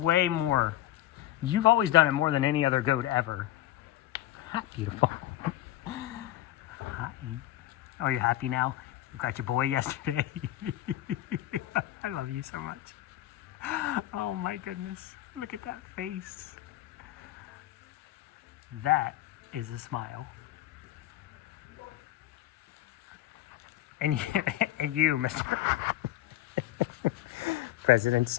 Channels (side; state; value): right; quieter; 14.1 dB